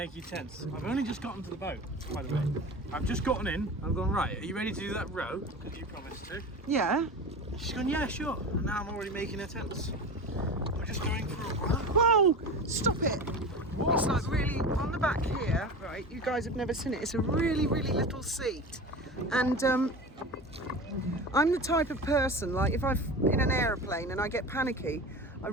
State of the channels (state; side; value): normal; both; correlation 0.31